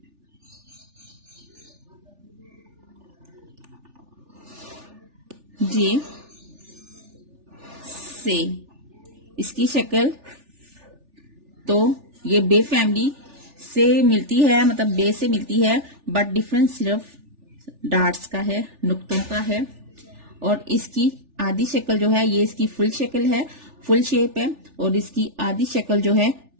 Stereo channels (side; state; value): left; late; 3.4 ms